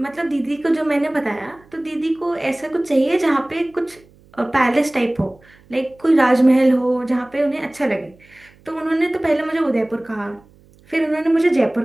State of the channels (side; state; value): right; noise; hum, 29 dB below the sound